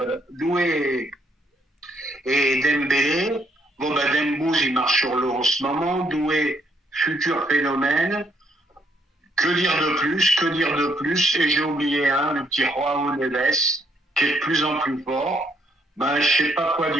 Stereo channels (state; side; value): normal; both; correlation 0.71